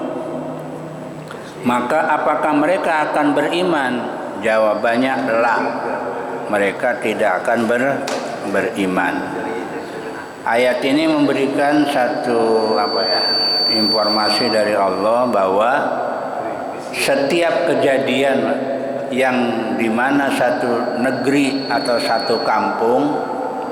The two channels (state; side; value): identical; both; correlation 1.00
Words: maka apakah mereka akan beriman? Jawabannya la, mereka tidak akan beriman. Ayat ini memberikan satu informasi dari Allah bahwa setiap kejadian yang dimana satu negeri atau satu kampung